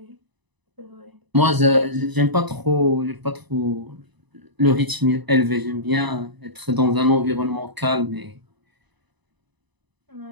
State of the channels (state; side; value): late; left; 1.0 ms